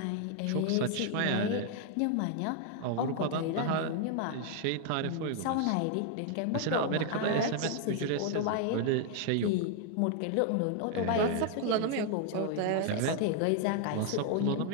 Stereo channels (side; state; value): both; different; correlation 0.00